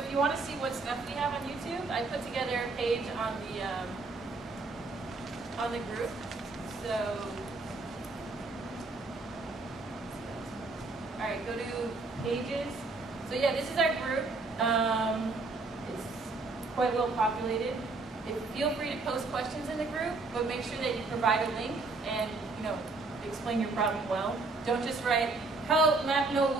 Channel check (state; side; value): quieter; left; 3.6 dB